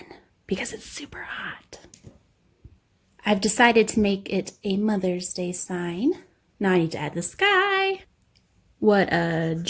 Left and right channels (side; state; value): both; identical; correlation 1.00